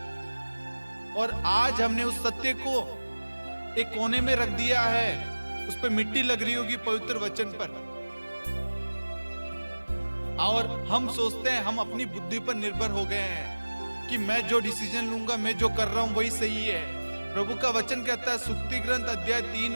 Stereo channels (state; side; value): inverted; both; correlation -1.00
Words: और आज हमने उस सत्य को एक कोने में रख दिया है, उस पर मिट्टी लग रही होगी पवित्र वचन पर, और हम सोचते हैं, हम अपनी बुद्धि पर निर्भर हो गए हैं कि मैं जो डिसीजन लूंगा, मैं जो कर रहा हूं वही सही है। प्रभु का वचन कहता है सुक्ति ग्रंथ अध्याय 3